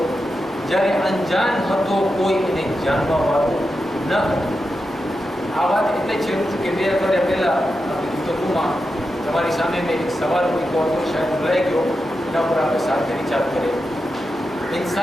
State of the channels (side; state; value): both; normal; correlation 0.89